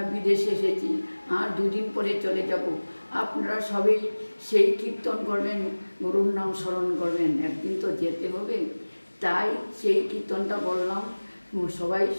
বিদেশে এসেছি আর দুদিন পরে চলে যাব। আপনারা সবাই সেই কীর্তন করবেন, গুরুর নাম স্মরণ করবেন, একদিন তো যেতে হবে। তাই সেই কীর্তনটা বললাম, সবাই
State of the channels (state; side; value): inverted; both; correlation -1.00